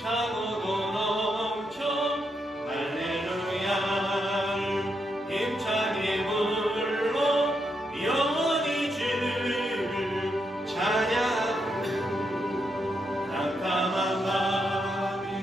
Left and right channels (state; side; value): normal; both; correlation 0.81